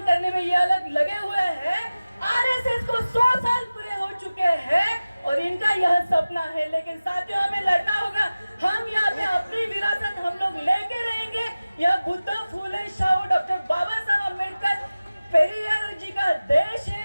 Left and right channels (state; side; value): inverted; both; correlation -0.97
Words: करने में ये अलग लगे हुए हैं। आरएसएस को 100 साल पूरे हो चुके हैं और इनका यह सपना है। लेकिन साथियों, हमें लड़ना होगा। हम यहाँ पे अपनी विरासत हम लोग लेके रहेंगे। यह बुद्ध, फूले, शाहू, डॉक्टर बाबा साहब अम्बेडकर, पेरियार जी का देश